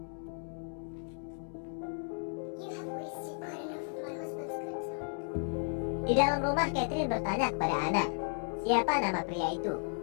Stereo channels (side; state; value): right; silent; 55 dB below the other